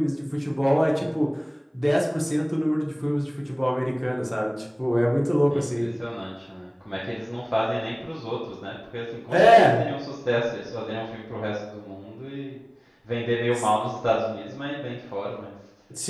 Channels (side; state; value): both; identical; correlation 1.00